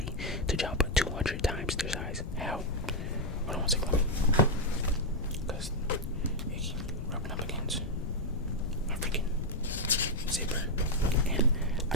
to jump 200 times their size. How? Hold on one second. Because it keeps rubbing up against my freaking zipper. And I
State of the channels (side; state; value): left; noise; rumble, 6 dB below the sound